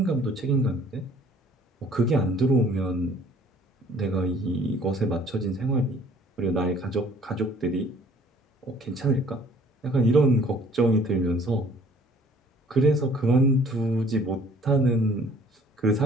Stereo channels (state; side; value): normal; both; correlation 0.55